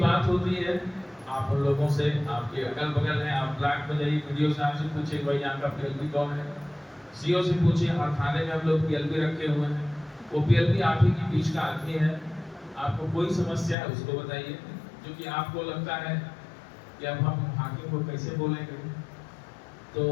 होती है आप उन लोगों से, आपके अगल बगल हैं, आप ब्लॉक में जाइए, वीडियो साहब से पूछिए भाई यहाँ का पीएलबी कौन है, सीओ से पूछिए, हर थाने में हम लोग पीएलबी रखे हुए हैं। वो पीएलबी आप ही के बीच का आदमी है। आपको कोई समस्या है उसको बताइए, जो कि आपको लगता है कि अब हम हाकिम को कैसे बोलेंगे, तो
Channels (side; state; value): right; drops out; at 13.8 s